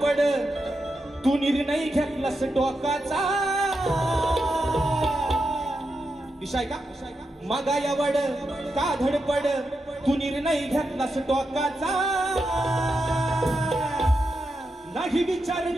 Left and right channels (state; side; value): normal; both; correlation 0.87